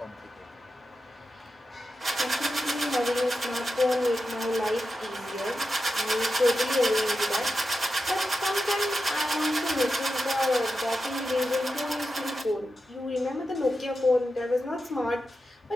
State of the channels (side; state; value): both; normal; correlation 0.90